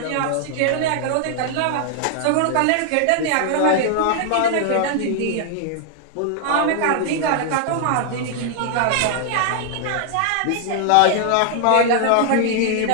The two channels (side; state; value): both; different; correlation 0.00